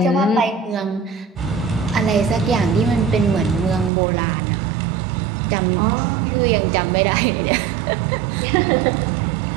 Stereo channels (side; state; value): left; drops out; at 3.9 s